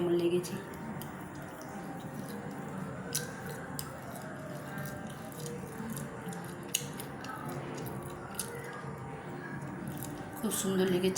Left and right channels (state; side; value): identical; both; correlation 1.00